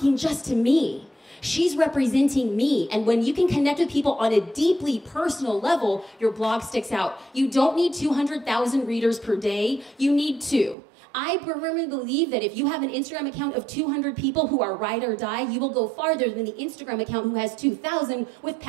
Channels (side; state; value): left; drops out; at 10.8 s